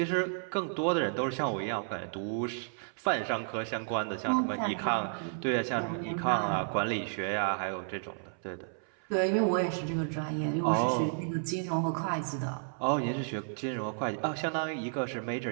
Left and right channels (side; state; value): left; silent; 56 dB below the other